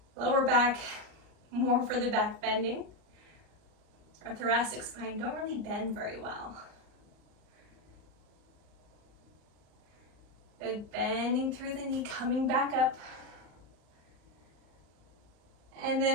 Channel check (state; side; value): late; left; 38 ms